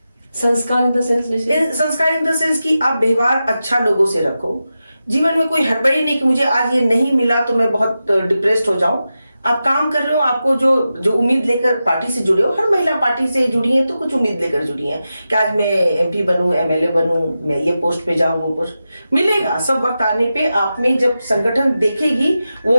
संस्कार इन द सेंस? संस्कार इन द सेंस कि आप व्यवहार अच्छा लोगों से रखो। जीवन में कोई हड़बड़ी नहीं कि मुझे आज ये नहीं मिला तो मैं बहुत डिप्रेस्ड हो जाऊं। आप काम कर रहे हो, आपको जो उम्मीद लेकर पार्टी से जुड़े हो, हर महिला पार्टी से जुड़ी है तो कुछ उम्मीद लेकर जुड़ी है कि आज मैं एमपी बनूं, एमएलए बनूं, मैं ये पोस्ट पे जाऊं, वो पोस्ट मिलेगा। सब वक्त आने पे आप में जब संगठन देखेगी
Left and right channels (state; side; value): inverted; both; correlation -0.91